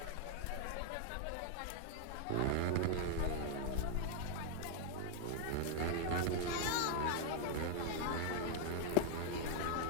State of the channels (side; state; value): both; different; correlation 0.00